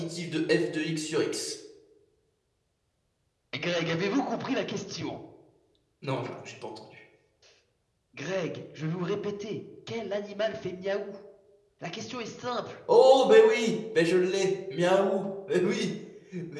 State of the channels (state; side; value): identical; both; correlation 1.00